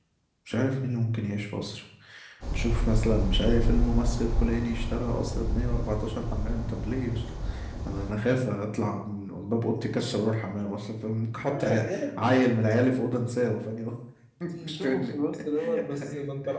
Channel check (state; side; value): identical; both; correlation 1.00